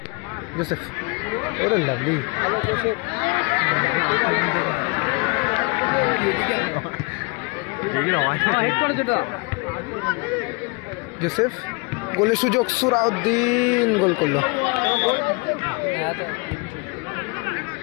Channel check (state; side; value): quieter; right; 30.2 dB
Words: জোসেফ, ওরে লাভলি, জোসেফ গোলের সুযোগ, সুরাউদ্দিন গোল করলো।